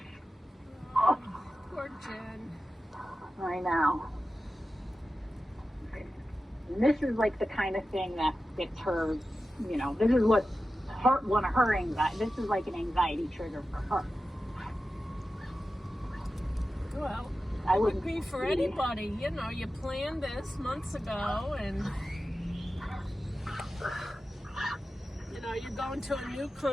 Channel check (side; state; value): both; normal; correlation 0.93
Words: Jen. I know. And this is like the kind of thing that gets her, this is what's one of her anxiety. This is like an anxiety trigger for her. Well, I it would wouldn't be for anybody. You planned this months ago, and you're going to a new